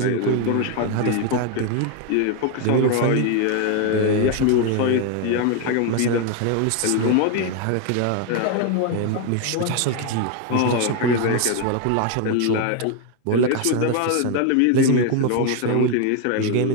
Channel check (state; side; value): different; both; correlation 0.01